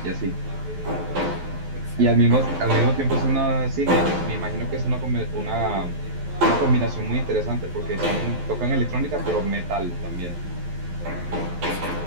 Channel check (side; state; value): left; late; 12 ms